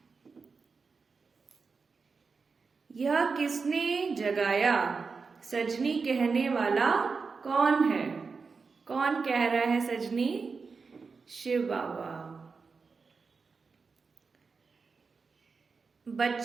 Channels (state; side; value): quieter; left; 4.8 dB